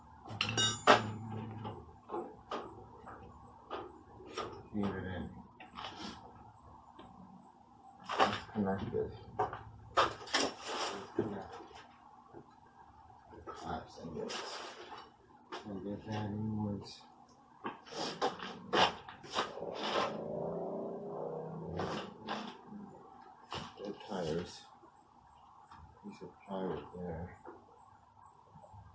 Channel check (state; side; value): identical; both; correlation 1.00